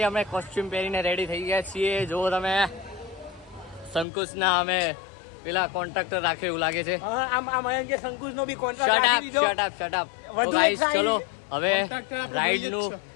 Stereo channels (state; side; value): drops out; right; at 4.0 s